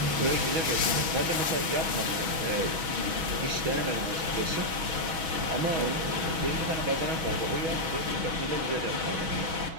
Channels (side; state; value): left; late; 6.2 ms